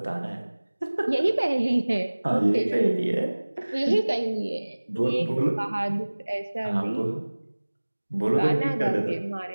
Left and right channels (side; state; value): both; inverted; correlation -1.00